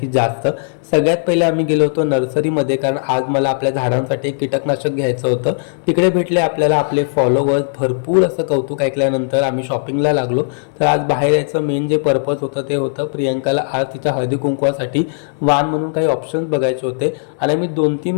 जास्त. सगळ्यात पहिले आम्ही गेलो होतो नर्सरीमध्ये, कारण आज मला आपल्या झाडांसाठी कीटकनाशक घ्यायचं होतं. तिकडे भेटले आपल्याला आपले फॉलोवर्स. भरपूर असं कौतुक ऐकल्यानंतर आम्ही शॉपिंगला लागलो. तर आज बाहेर यायचं मेन जे पर्पज होतं ते होतं प्रियंकाला आज तिच्या हळदी कुंकवासाठी वाण म्हणून काही ऑप्शन्स बघायचे होते. आणि मी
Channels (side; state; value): right; silent; digital silence